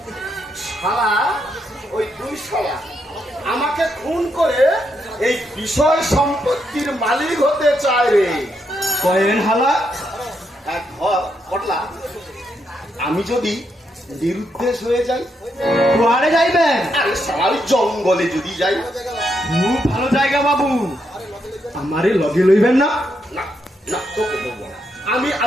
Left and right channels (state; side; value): normal; both; correlation 0.80